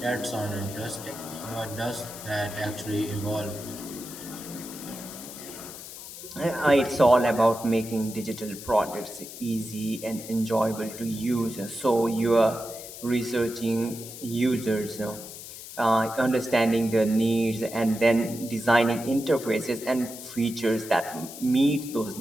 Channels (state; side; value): noise; left; hiss, 13 dB below the sound